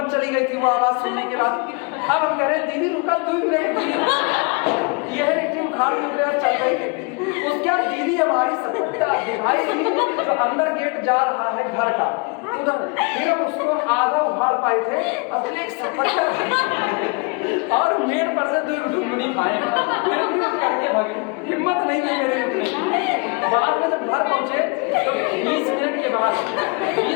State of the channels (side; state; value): right; quieter; 31.3 dB